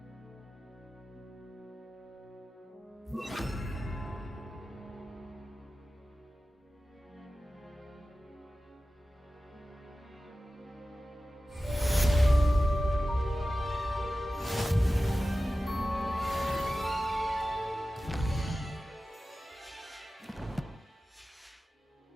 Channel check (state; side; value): normal; both; correlation 0.95